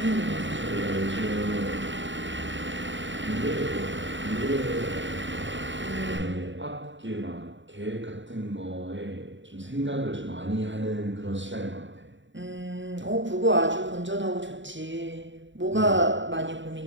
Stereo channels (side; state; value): left; late; 0.54 ms